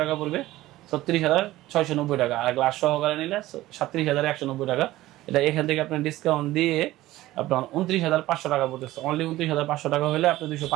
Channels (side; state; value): left; quieter; 16.5 dB